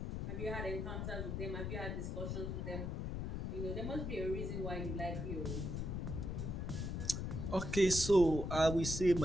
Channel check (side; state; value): left; noise; rumble, 3 dB below the sound